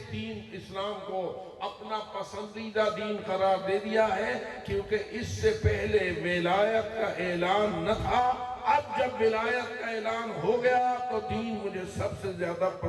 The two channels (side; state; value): both; identical; correlation 1.00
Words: دین اسلام کو اپنا پسندیدہ دین قرار دے دیا ہے، کیونکہ اس سے پہلے ولایت کا اعلان نہ تھا۔ اب جب ولایت کا اعلان ہو گیا تو دین مجھے سب سے زیادہ